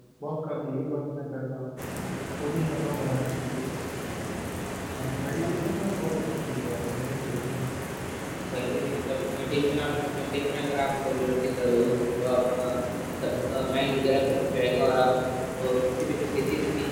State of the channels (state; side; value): identical; both; correlation 1.00